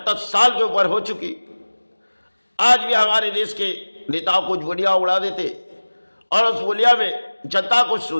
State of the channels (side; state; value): both; inverted; correlation -1.00